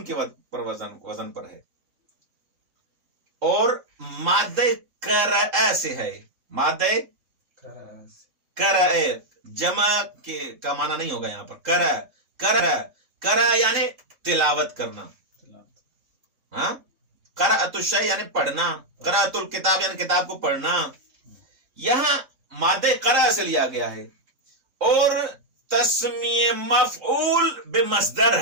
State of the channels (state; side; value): late; left; 3.7 ms